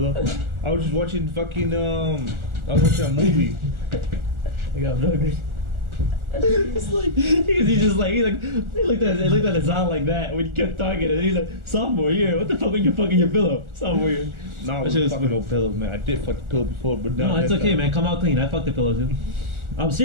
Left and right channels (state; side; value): late; left; 1.4 ms